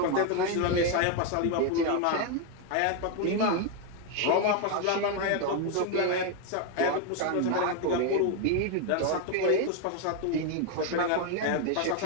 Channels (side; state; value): both; different; correlation 0.01